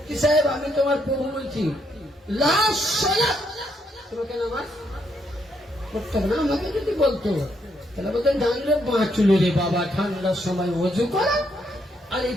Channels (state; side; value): normal; both; correlation 0.75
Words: সাহেব আমি তোমার প্রভু বলছি, লাশ সালাত, তোমাকে নামাজ পড়তে হবে না, আমাকে যদি বলতো তাহলে বলতেন জানলে বাঁচলো রে বাবা, ঠান্ডার সময় ওযু করা আর এই